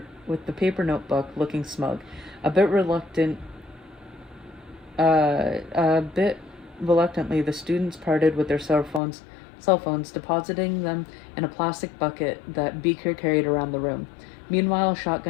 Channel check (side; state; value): right; drops out; at 9.0 s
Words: paper notebook, looking smug, a bit reluctantly. The students parted with their cell phones, depositing them in a plastic bucket that Beaker carried around the room. Meanwhile,